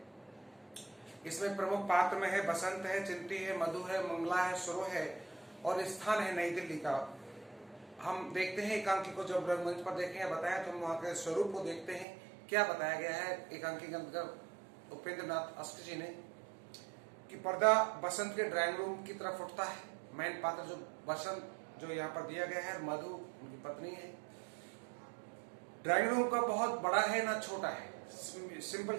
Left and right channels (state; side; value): drops out; left; at 12.1 s